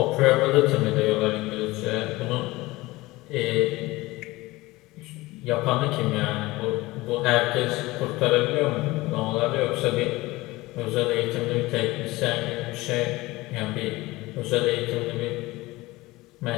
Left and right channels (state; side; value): quieter; right; 20.2 dB